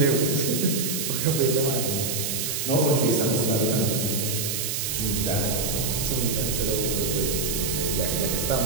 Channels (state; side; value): noise; right; hiss, 1 dB below the sound